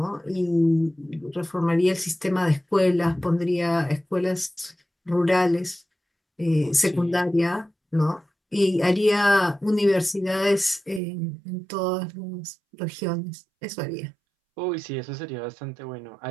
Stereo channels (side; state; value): left; drops out; at 11.0 s